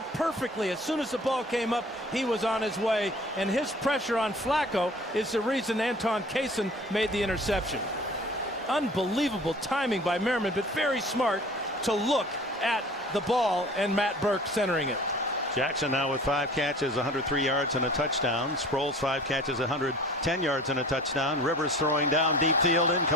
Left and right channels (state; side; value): normal; both; correlation 0.45